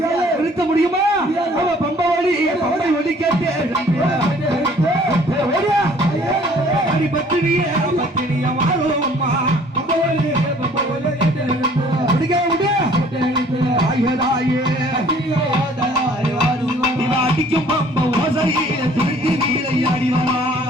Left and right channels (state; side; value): normal; both; correlation 0.56